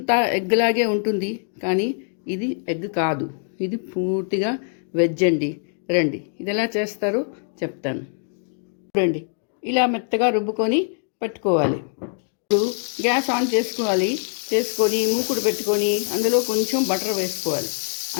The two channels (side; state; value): right; silent; 63 dB below the other